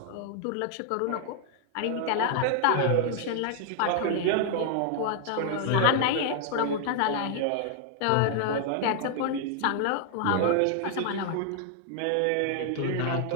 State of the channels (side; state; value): both; different; correlation 0.00